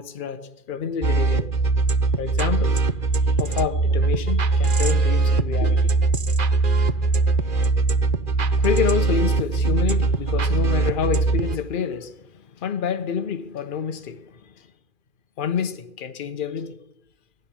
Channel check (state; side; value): late; right; 2.4 ms